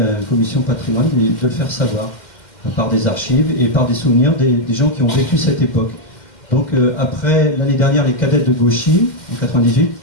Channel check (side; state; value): right; late; 2.1 ms